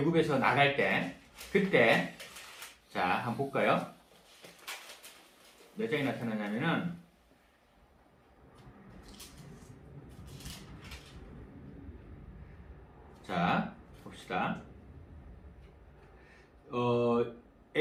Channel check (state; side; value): identical; both; correlation 1.00